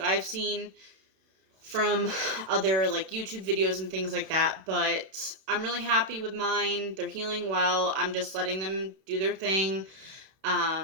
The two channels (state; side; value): late; left; 32 ms